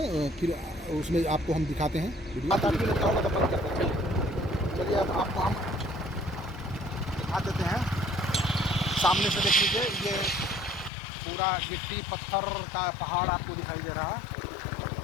फिर उसमें आपको हम दिखाते हैं। चलिए अब आपको हम दिखा देते हैं। सामने से देख लीजिए, ये पूरा गिट्टी पत्थर का पहाड़ आपको दिखाई दे रहा है।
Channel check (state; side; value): drops out; right; at 10.9 s